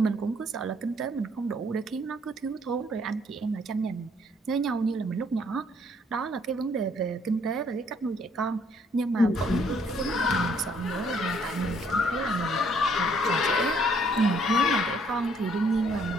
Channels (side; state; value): both; normal; correlation 0.66